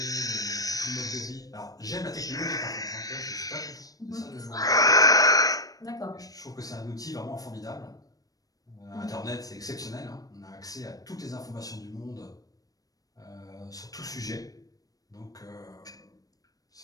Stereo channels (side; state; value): right; late; 0.18 ms